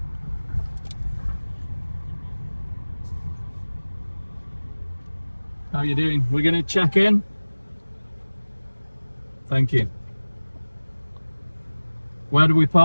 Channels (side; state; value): both; inverted; correlation -1.00